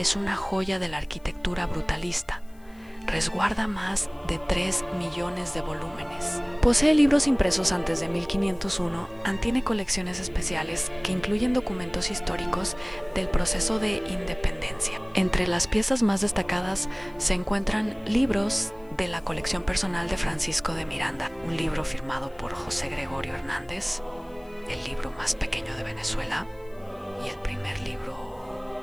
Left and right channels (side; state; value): left; noise; hiss, 30 dB below the sound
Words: una joya de la arquitectura brutalista. Resguarda más de 3 millones de volúmenes. Posee libros impresos antes de 1501, tiene colecciones especiales que incluyen documentos históricos del proceso de independencia. Entre las piezas más destacadas se encuentran libros de la colección personal de Francisco de Miranda, un libro firmado por José Gregorio Hernández, el libro más pequeño de Venezuela y el primer libro